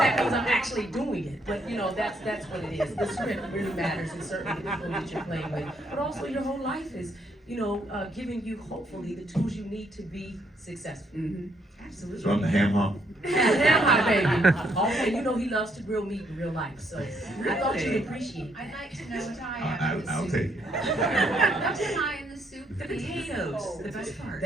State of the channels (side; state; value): both; normal; correlation 0.72